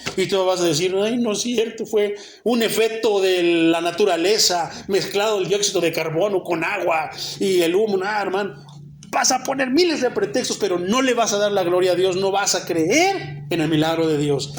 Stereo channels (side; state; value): both; identical; correlation 1.00